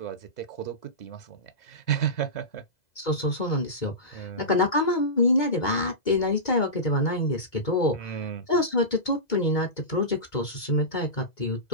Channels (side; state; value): right; late; 2.0 ms